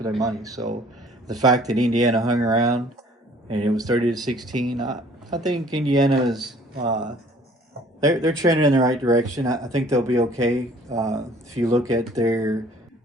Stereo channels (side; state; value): both; normal; correlation 0.54